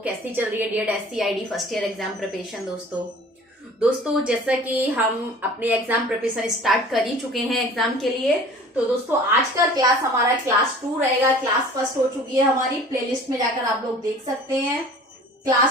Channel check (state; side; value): normal; both; correlation 0.45